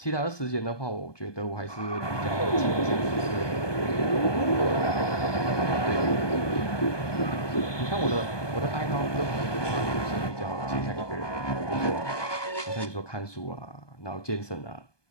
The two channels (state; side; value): late; right; 1.2 ms